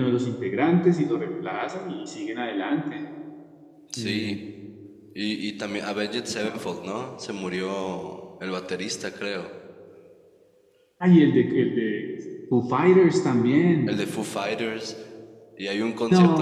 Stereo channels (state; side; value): identical; both; correlation 1.00